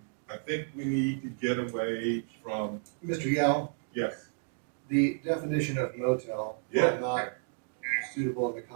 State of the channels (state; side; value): silent; left; digital silence